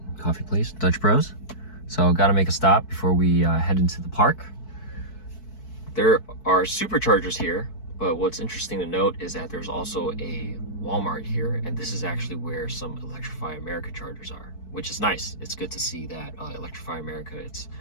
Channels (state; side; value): late; right; 4.6 ms